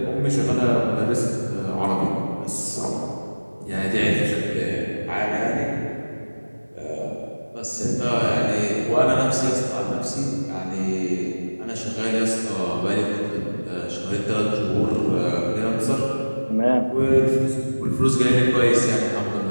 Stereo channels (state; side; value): inverted; both; correlation -1.00